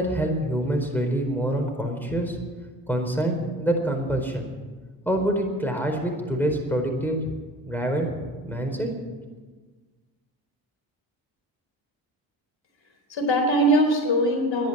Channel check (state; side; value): normal; both; correlation 0.41